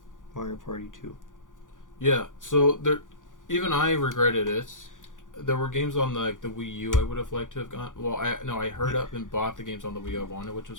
Mario Party 2. Yeah, so there, even I regretted it. There were games on the Wii U I would have liked to have gone. Well, I hurried up and bought the games on the Wii U I wanted, which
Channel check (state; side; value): late; right; 0.88 ms